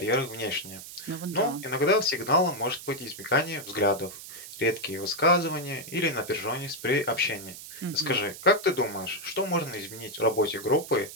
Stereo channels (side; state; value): right; noise; hiss, 13 dB below the sound